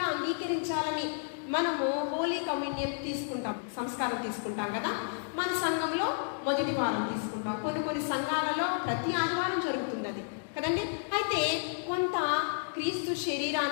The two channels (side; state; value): right; silent; digital silence